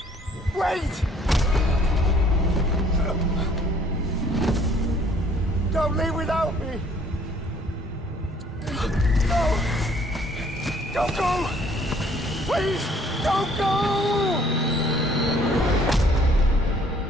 Wait! Don't leave without me! No! Don't go! Please, don't go!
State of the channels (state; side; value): normal; both; correlation 0.59